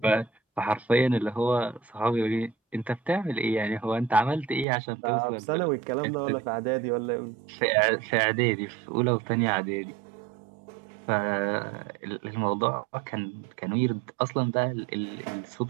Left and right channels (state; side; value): drops out; left; at 4.7 s